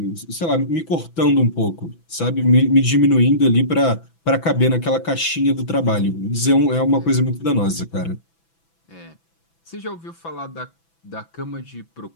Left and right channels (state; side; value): late; right; 6.0 ms